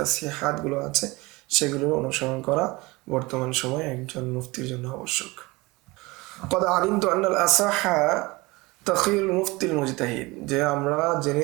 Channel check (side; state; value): left; quieter; 22.9 dB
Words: সে হাতগুলো আছে, সেগুলো অনুসরণ করা বর্তমান সময়ে একজন মুফতির জন্য আবশ্যক। কদ আলিমতু আন্নাল আসাহা তাখিরুল মুফতিল মুজতাহিদ, যে আমরা জেনে